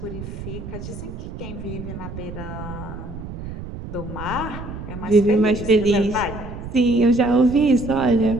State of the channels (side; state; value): right; noise; rumble, 9 dB below the sound